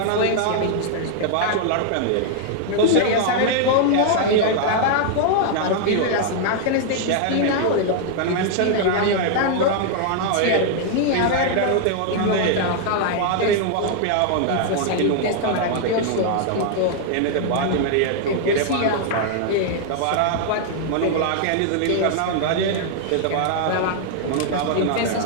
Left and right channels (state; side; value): different; both; correlation 0.00